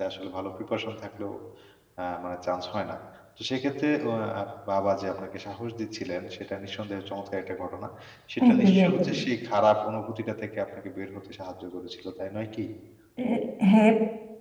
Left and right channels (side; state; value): both; identical; correlation 1.00